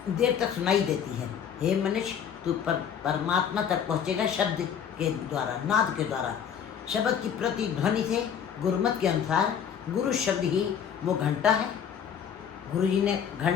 देर तक सुनाई देती है। हे मनुष्य, तू परमात्मा तक पहुँचेगा शब्द के द्वारा, नाद के द्वारा। शब्द की प्रतिध्वनि से गुरुमत के अनुसार गुरु शब्द ही वो घंटा है। गुरु जी ने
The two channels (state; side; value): quieter; right; 8.1 dB